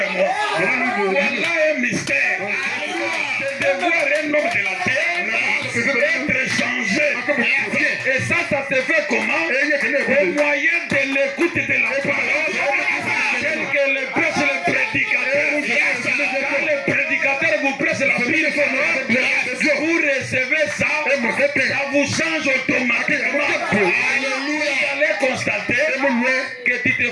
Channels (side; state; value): both; identical; correlation 1.00